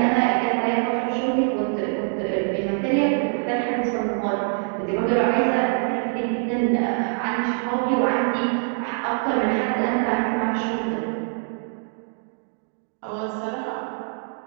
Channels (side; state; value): left; silent; 59 dB below the other